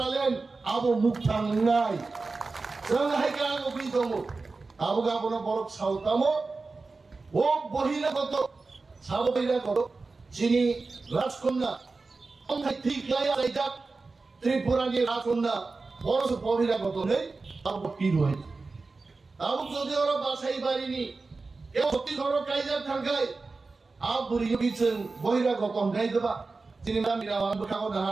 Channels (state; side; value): quieter; left; 3.9 dB